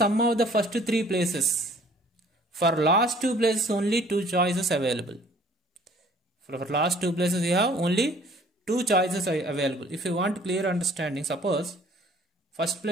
of the first 3 places, for last 2 places only 2 choices available. For last 2 places you have only 2 choices available. If you want clear understanding, suppose first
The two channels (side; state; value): both; normal; correlation 0.55